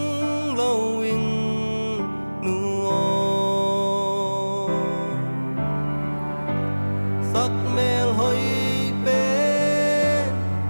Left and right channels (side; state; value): both; inverted; correlation -1.00